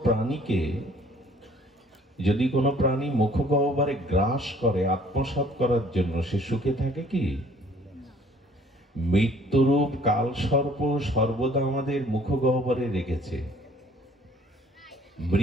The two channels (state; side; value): normal; both; correlation 0.56